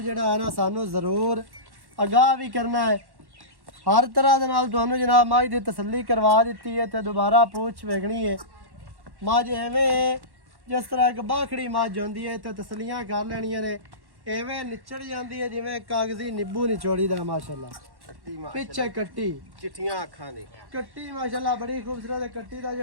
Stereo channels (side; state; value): left; late; 1.1 ms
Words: ਜਿਹੜਾ ਹੈ ਨਾ ਸਾਨੂੰ ਜ਼ਰੂਰ ਅਗਾਹ ਵੀ ਕਰਨਾ ਹੈ ਹਰ ਤਰ੍ਹਾਂ ਦੇ ਨਾਲ ਤੁਹਾਨੂੰ ਜਨਾਬ ਮਾਝ ਦੀ ਤਸੱਲੀ ਕਰਵਾ ਦਿੱਤੀ ਹੈ ਤੇ ਦੁਬਾਰਾ ਪੁੱਛ ਵੇਖਣੀ ਹੈ ਮਾਝ ਐਵੇਂ ਹੈ, ਜਿਸ ਤਰ੍ਹਾਂ ਇੱਕ ਬਾਖੜੀ ਮੱਝ ਹੁੰਦੀ ਹੈ ਤੇ ਤਸੱਲੀਆਂ ਕਰ ਲੈਣੀਆਂ ਨੇ ਐਵੇਂ ਨਿਚੜ ਜਾਂਦੀ ਹੈ ਜਿਵੇਂ ਕਾਗਜ਼ੀ ਨਿੰਬੂ ਨਿਚੋੜੀ ਦਾ ਮਾਸ਼ਾਅੱਲਾ ਪਿੱਛੇ ਕੱਟੀ ਚਿੱਟੀਆਂ ਅੱਖਾਂ ਦੇ ਕੱਟੀ ਮਾਸ਼ਾਅੱਲਾ ਬੜੀ ਖੂਬਸੂਰਤ ਹੈ ਕੱਟੀ ਦਾ